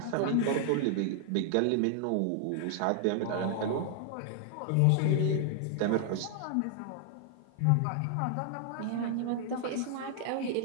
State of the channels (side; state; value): both; different; correlation 0.00